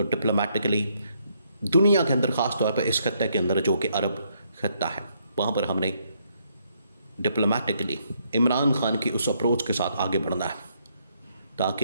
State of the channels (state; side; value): inverted; both; correlation -0.73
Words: ڈپلومیٹکلی دنیا کے اندر، خاص طور پہ اس خطے کے اندر جو کہ عرب خطہ ہے، وہاں پر ہم نے ڈپلومیٹکلی عمران خان کی اس اپروچ کے ساتھ آگے بڑھنا ہے